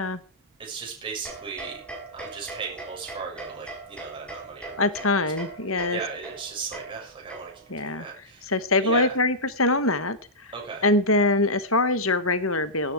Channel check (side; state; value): both; normal; correlation -0.12